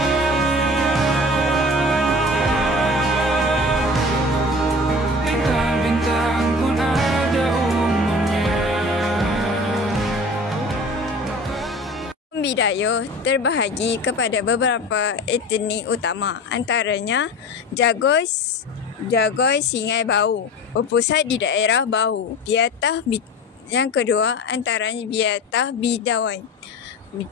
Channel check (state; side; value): normal; both; correlation 0.37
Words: Bintang-bintang pun ada umurnya. Bidayuh terbahagi kepada beberapa etnik utama, antaranya Jagoy, Singai, Bau, berpusat di daerah Bau. Biatah, yang kedua antaranya Biatah Bidawan,